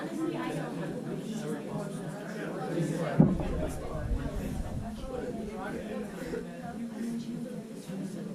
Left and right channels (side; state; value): both; identical; correlation 1.00